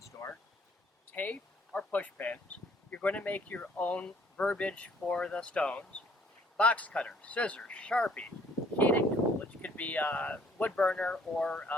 store, tape or push pins. You're going to make your own verbiage for the stones, box cutter, scissors, Sharpie, heating tool, which could be a wood burner or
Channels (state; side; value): normal; both; correlation 0.61